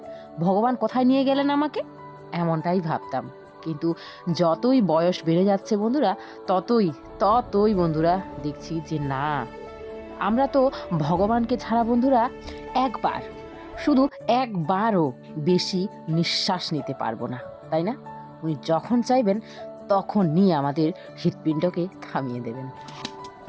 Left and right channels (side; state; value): both; identical; correlation 1.00